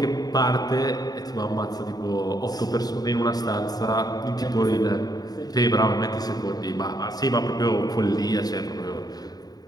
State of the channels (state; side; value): late; right; 0.19 ms